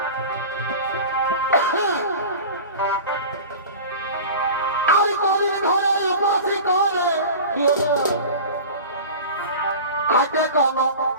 আমি কদিন ধরে উপাসী করে কি হলো খাইতে কোন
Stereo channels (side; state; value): both; inverted; correlation -0.35